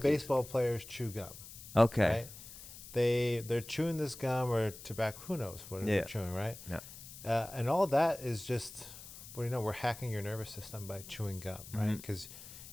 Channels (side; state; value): left; noise; hiss, 15 dB below the sound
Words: players chew gum. Okay. Right? They're chewing this gum or tobacco. Who knows what they're chewing, right? Yeah. And all that is just, we're hacking your nervous system by chewing gum, right? Because